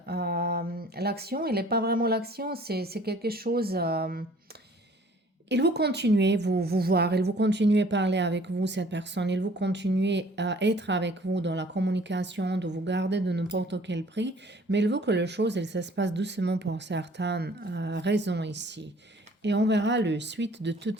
L'action, elle n'est pas vraiment l'action, c'est quelque chose. Il vous continuez vous voir, il vous continuez à parler avec vous, cette personne, il vous continuez à être avec vous dans la communication, de vous garder de n'importe quel prix, mais il veut que les choses, elles se passent doucement pour certaines raisons ici. Et on verra le suite de tout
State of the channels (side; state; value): both; normal; correlation 0.54